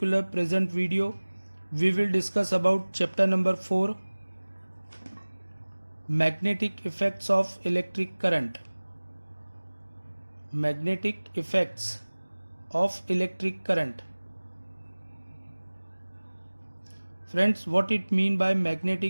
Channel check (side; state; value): both; inverted; correlation -1.00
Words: present video. We will discuss about chapter number 4, magnetic effects of electric current. Magnetic effects of electric current. Friends, what it mean by